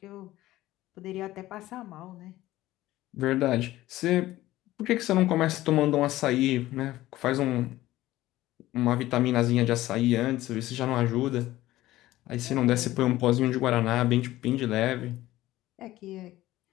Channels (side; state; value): right; quieter; 16.1 dB